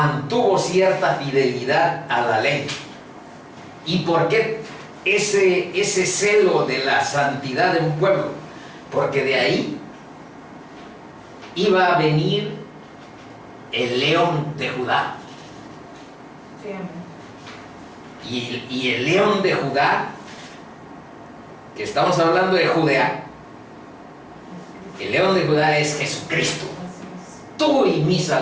cierta fidelidad a la ley. ¿Y por qué ese celo de la santidad de un pueblo? Porque de ahí iba a venir el león de Judá. Sí, amén. Y el león de Judá, que estamos hablando de Judea, el león de Judá es Jesucristo, tú y mi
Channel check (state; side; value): identical; both; correlation 1.00